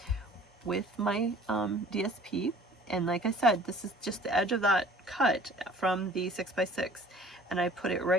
with my DSP. And like I said, this is just the edge of that cut from the 6x6. And I put it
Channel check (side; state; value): both; normal; correlation 0.49